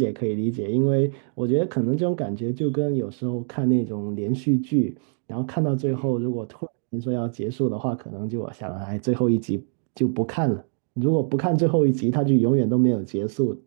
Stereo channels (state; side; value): silent; left; digital silence